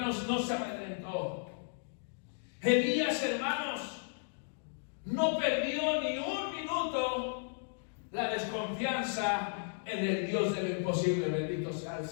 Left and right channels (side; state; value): right; silent; digital silence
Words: no se amedrentó. Elías, hermanos, no perdió ni un minuto la desconfianza en el Dios de lo imposible. Bendito sea el